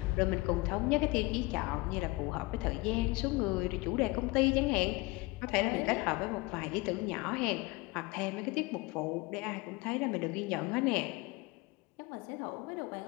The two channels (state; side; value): quieter; right; 23.2 dB